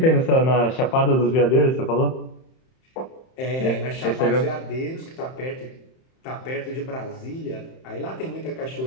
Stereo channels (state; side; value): late; right; 31 ms